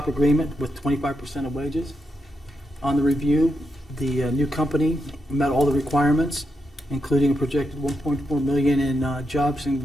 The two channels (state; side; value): normal; both; correlation 0.84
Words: agreement with 25% of wages. On the review, the new company met all the requirements, including a projected 1.4 million in jobs